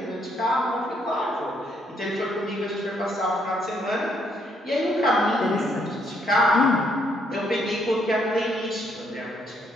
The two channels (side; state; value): both; normal; correlation 0.71